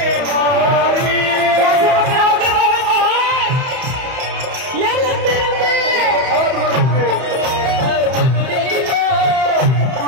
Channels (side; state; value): left; late; 31 ms